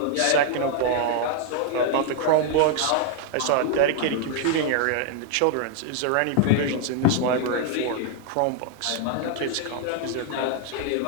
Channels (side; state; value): both; different; correlation 0.00